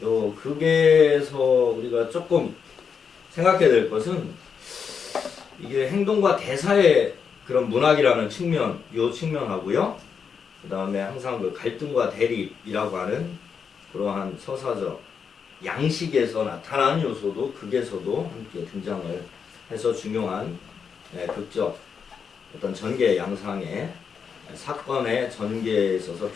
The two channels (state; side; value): quieter; right; 6.4 dB